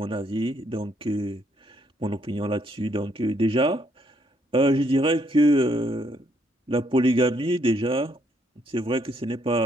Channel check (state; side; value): normal; both; correlation 0.71